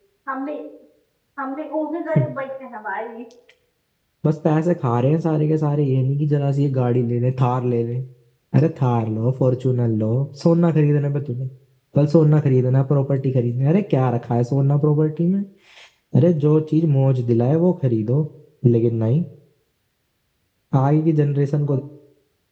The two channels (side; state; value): both; identical; correlation 1.00